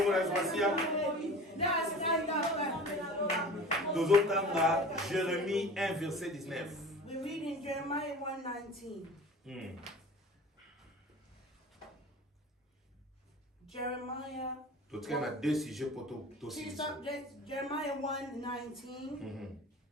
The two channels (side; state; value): both; normal; correlation 0.39